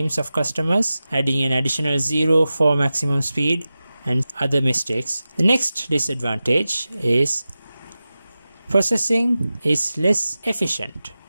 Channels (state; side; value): inverted; both; correlation -0.94